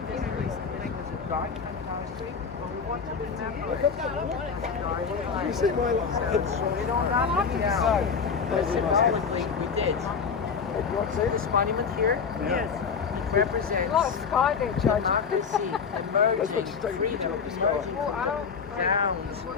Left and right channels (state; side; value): quieter; right; 5.9 dB